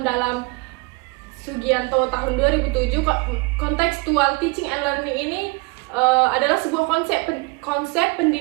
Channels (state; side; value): quieter; left; 27.8 dB